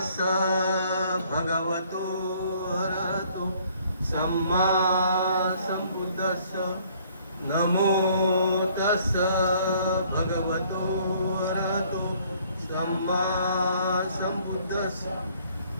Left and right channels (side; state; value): both; inverted; correlation -0.61